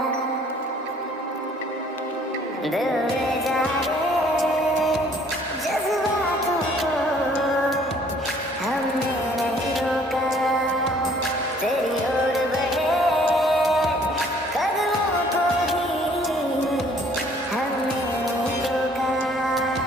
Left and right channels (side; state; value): both; normal; correlation 0.59